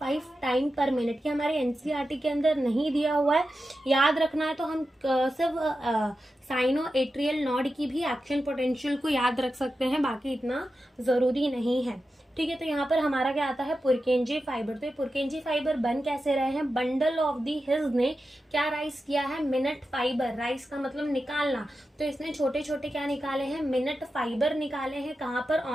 टाइम पर मिनट। ये हमारे एनसीईआरटी के अंदर नहीं दिया हुआ है, याद रखना है तो हम सिर्फ साइनो एट्रियल नॉड की भी एक्शन पोटेंशियल को याद रख सकते हैं, बाकी इतना जरूरी नहीं है। ठीक है, तो यहाँ पर हमारा क्या आता है, पुरकेंजे फाइबर। तो ये पुरकेंजे फाइबर बन कैसे रहे हैं, बंडल ऑफ दी हिल्स ने क्या राइज किया है, मिनट फाइबर। राइज का मतलब निकालना, तो इसने छोटे छोटे क्या निकाले हैं, मिनट फाइबर निकाले हैं। कहाँ पर,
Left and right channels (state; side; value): normal; both; correlation 0.91